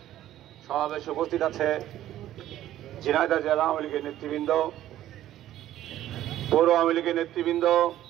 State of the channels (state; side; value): quieter; left; 13.0 dB